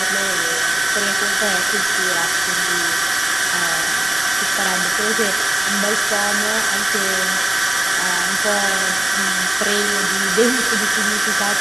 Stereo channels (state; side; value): noise; right; rumble, 24 dB below the sound